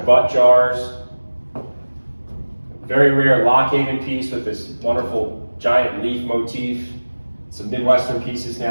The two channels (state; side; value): inverted; both; correlation -1.00